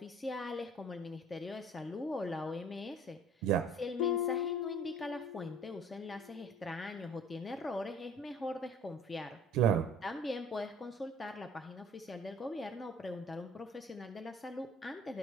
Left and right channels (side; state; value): both; normal; correlation 0.50